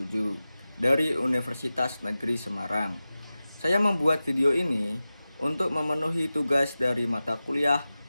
dari Universitas Negeri Semarang. Saya membuat video ini untuk memenuhi tugas dari mata kuliah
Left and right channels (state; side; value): inverted; both; correlation -0.95